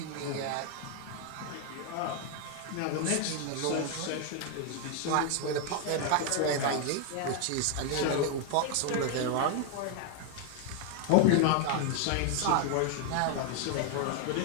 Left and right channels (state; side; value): different; both; correlation 0.00